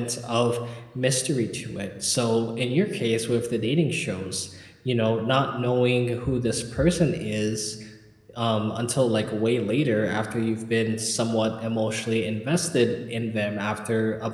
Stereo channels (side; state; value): both; identical; correlation 1.00